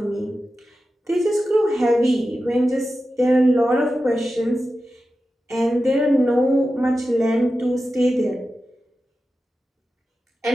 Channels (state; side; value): normal; both; correlation 0.92